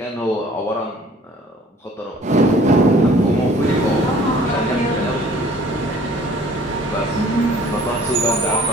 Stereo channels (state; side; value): normal; both; correlation 0.53